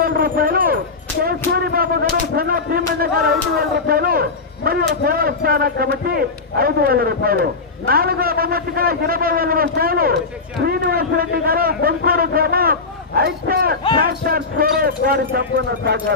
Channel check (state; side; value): quieter; right; 4.2 dB